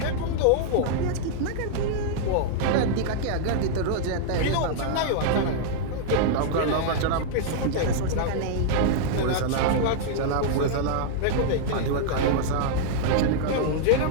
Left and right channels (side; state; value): both; different; correlation -0.01